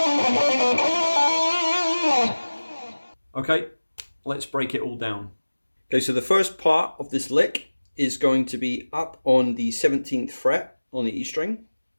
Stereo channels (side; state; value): both; inverted; correlation -1.00